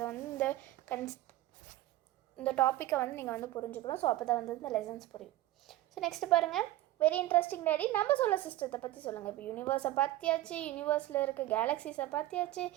வந்து இந்த டாப்பிக்கை வந்து நீங்கள் வந்து புரிஞ்சுக்கணும். ஸோ அப்போ தான் வந்து இந்த லெசன்ஸ் புரியும். ஸோ நெக்ஸ்ட்டு பாருங்கள், வெரி இன்ட்ரெஸ்டிங் டேடி, நம்ம சோலார் சிஸ்டத்தை பற்றி சொல்லுங்கள். இப்போ யூனிவர்ஸை பார்த்தியாச்சு, யூனிவர்ஸில் இருக்க கேலக்ஸிஸை பார்த்தியாச்சு,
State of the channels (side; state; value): left; quieter; 15.7 dB